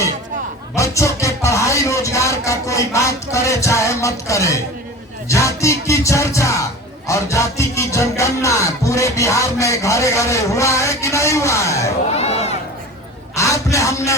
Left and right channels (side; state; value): both; normal; correlation 0.36